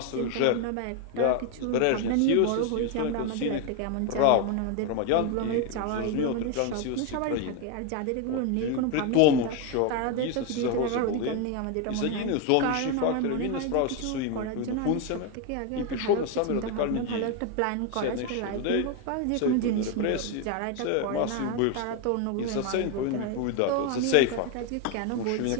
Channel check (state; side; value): different; both; correlation 0.01